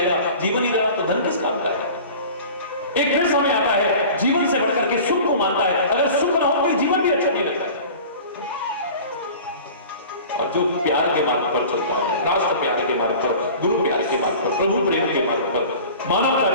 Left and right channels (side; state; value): both; inverted; correlation -0.40